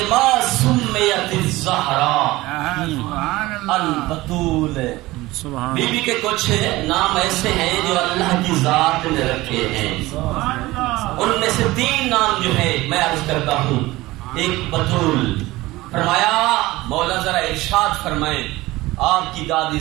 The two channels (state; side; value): quieter; left; 19.1 dB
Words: سمیت الزہرا البتول. بی بی کے کچھ نام ایسے ہیں جو اللہ کی ذات نے رکھے ہیں. ان میں سے 3 نام جو ہے میں عرض کرتا ہوں. ایک بتول. فرمایا مولا ذرا ارشاد فرمائیں آپ کی دادی